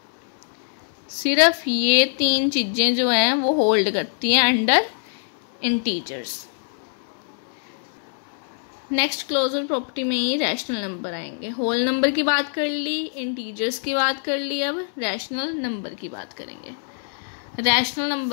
सिर्फ ये 3 चीजें जो हैं वो होल्ड करती हैं under integers. Next closure property में ही रैशनल नंबर आएंगे। होल नंबर की बात कर ली, इंटीजर्स की बात कर ली, अब रैशनल नंबर की बात करेंगे। रैशनल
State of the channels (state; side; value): silent; right; 61 dB below the other